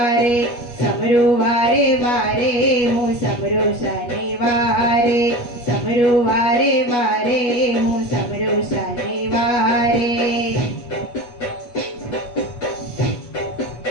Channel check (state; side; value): late; right; 8.3 ms